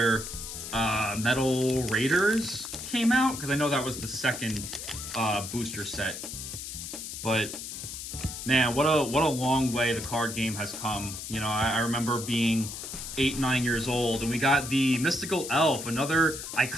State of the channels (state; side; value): noise; left; hiss, 8 dB below the sound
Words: Metal Raiders came out, because I know that was the second booster set. But man, what a long way the card game has come. You know, I remember being 8-9 years old, and we got the Mystical Elf, another